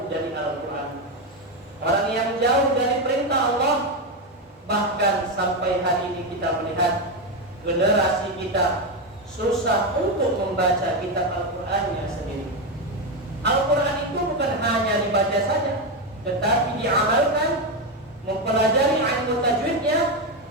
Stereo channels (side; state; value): both; normal; correlation 0.10